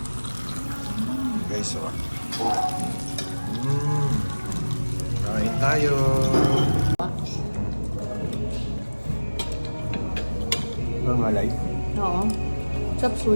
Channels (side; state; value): both; inverted; correlation -1.00